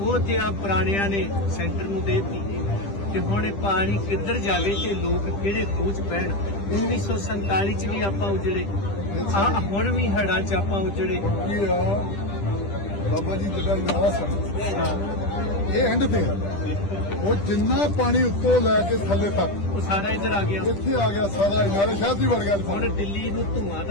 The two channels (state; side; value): late; right; 10 ms